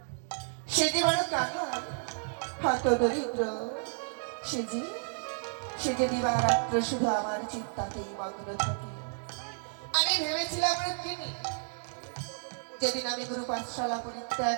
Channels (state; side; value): silent; left; digital silence